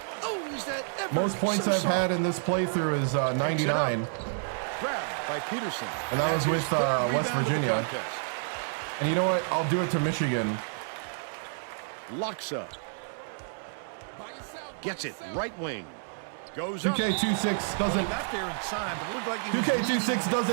Oh, is that ever Most points so I've soft. had in this playthrough is 99. Grabbed by Peterson. And that was That's with, his third West rebound of the Virginia. contest. And you know what? I'll do it to Michigan. Locks up. Gets it. Right wing. Goes up. 2K26 doesn't. Got there in time, but it looked like he was 2K26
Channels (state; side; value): silent; left; 58 dB below the other